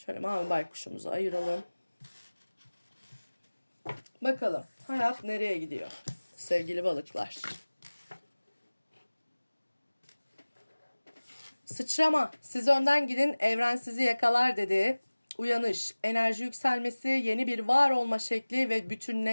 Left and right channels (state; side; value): inverted; both; correlation -1.00